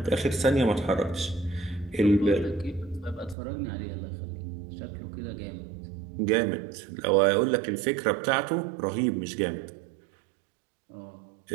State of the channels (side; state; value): left; drops out; at 3.4 s